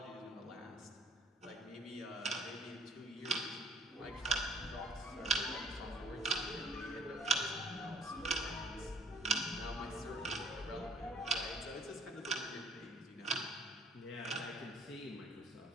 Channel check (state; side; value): normal; both; correlation 0.55